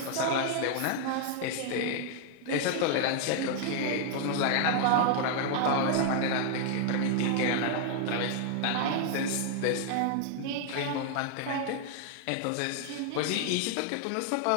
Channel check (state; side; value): different; both; correlation 0.00